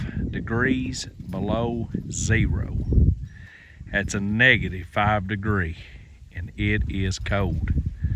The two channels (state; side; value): identical; both; correlation 1.00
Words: degrees below zero. That's a negative 5 degree, and it is cold.